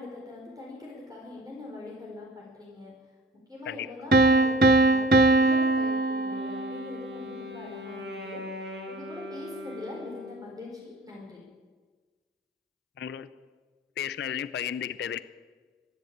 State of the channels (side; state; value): both; normal; correlation 0.45